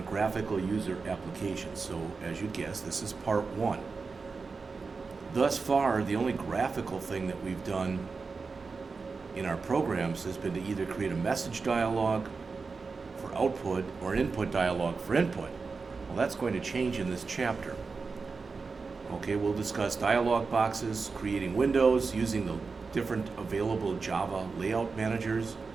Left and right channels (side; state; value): left; quieter; 4.6 dB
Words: graphical user applications. So as you guessed, this is part one. Thus far, the only graphical thing that we've done in our programs has been to either create a message dialog for output or an input dialog for input. Well, that's going to change in this chapter. Okay, we'll discuss dialog boxes, creating windows, using the different available Java layout managers,